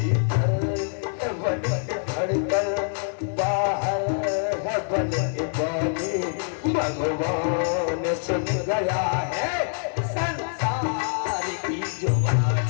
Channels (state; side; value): silent; right; 62 dB below the other